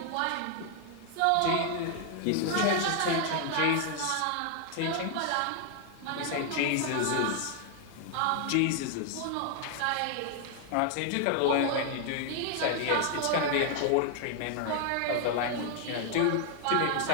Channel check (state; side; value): different; both; correlation 0.00